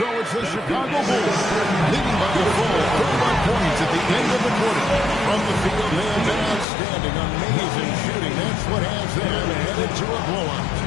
it's the Chicago Bulls leading by a full 31 points at the end of the quarter. From the field, they have been outstanding, amazing shooting. That's what has them headed to a blowout.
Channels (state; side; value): drops out; right; at 6.7 s